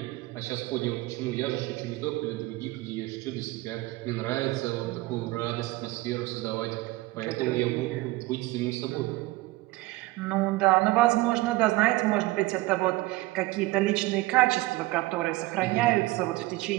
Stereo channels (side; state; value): left; quieter; 20.1 dB